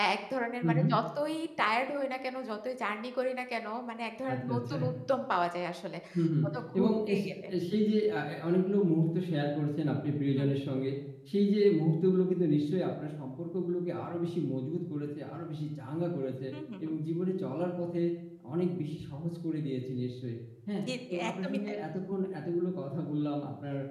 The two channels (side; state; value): both; identical; correlation 1.00